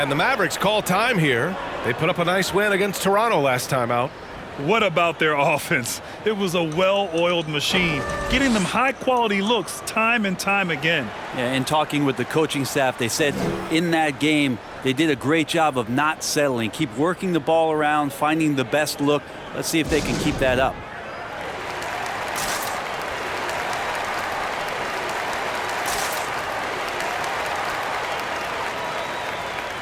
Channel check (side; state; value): both; identical; correlation 1.00